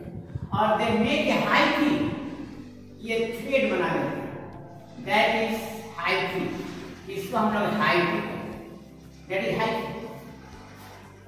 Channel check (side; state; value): both; identical; correlation 1.00